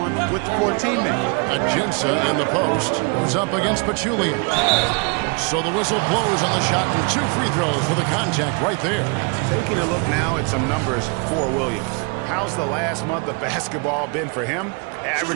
for a teammate. Ajinça in the post who's up against Pachulia. So the whistle blows on the shot and 2 free throws for the contact right there. Taking a look now at some numbers for Williams. How's the last month of basketball been for him?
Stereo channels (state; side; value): quieter; left; 33.9 dB